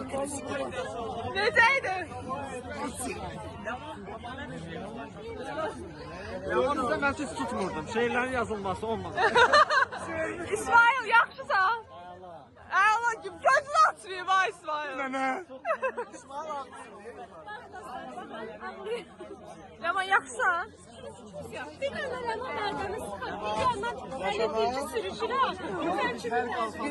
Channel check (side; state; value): both; identical; correlation 1.00